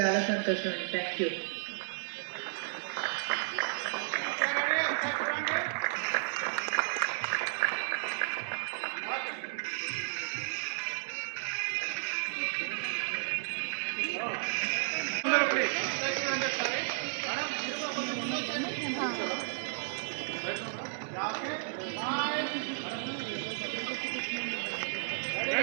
చాలా సంతోషం. Thank you.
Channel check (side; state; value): left; silent; digital silence